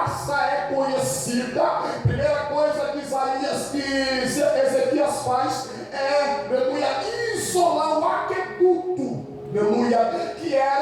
é conhecida, a primeira coisa que Ezequias faz é, aleluia, isolar o aqueduto, aleluia, que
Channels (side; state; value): both; identical; correlation 1.00